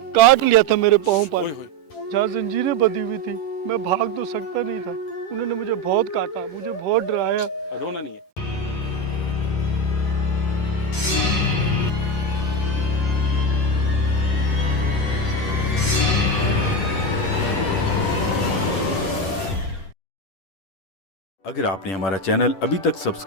काट लिया था मेरे पाँव पर, ओए होए। जहाँ जंजीरें बंधी हुई थी। मैं भाग तो सकता नहीं था। उन्होंने मुझे बहुत काटा, मुझे बहुत डराया। रोना नहीं है। अगर आपने हमारा चैनल अभी तक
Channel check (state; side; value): late; right; 10 ms